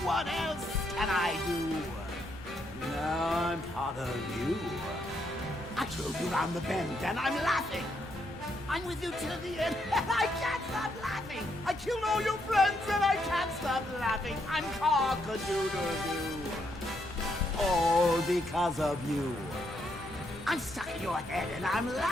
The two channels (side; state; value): both; normal; correlation 0.77